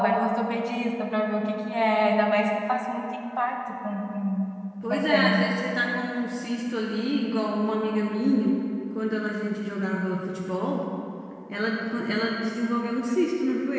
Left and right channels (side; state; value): both; identical; correlation 1.00